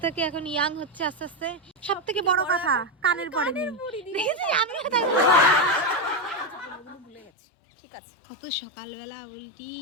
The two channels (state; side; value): drops out; right; at 7.3 s